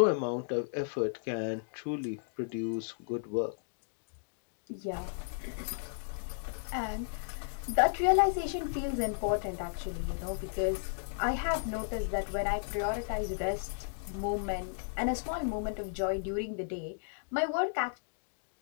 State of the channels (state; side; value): silent; right; digital silence